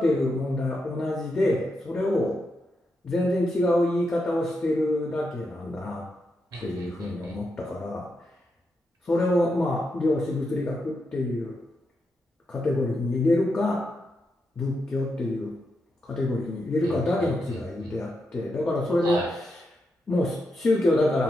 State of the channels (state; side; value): normal; both; correlation 0.85